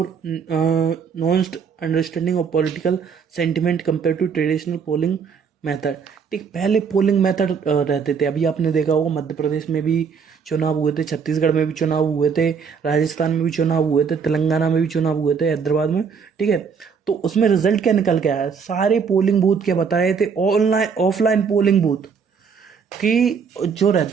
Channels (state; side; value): quieter; left; 6.2 dB